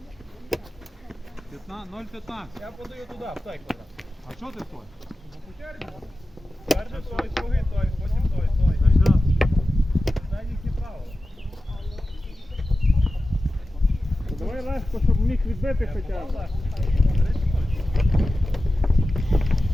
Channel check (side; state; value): both; normal; correlation 0.94